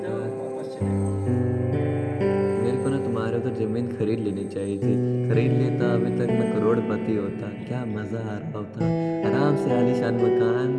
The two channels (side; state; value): both; identical; correlation 1.00